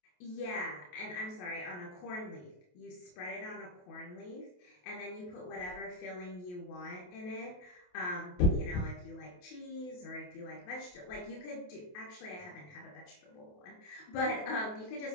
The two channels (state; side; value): late; right; 28 ms